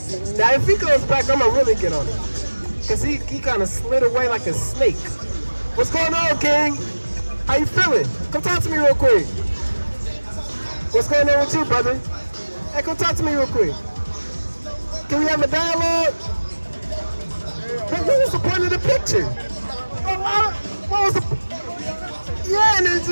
if he goes back, I'm gonna really get on him. Cause he kind of slid away like a snake. What's going on, King? How you feeling? Come talk to me real quick. What's going on with you, brother? Hey, come talk to me real quick. Can we have a dialogue? What was the point of the picture? What was the... Yeah, and it's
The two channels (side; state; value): both; inverted; correlation -1.00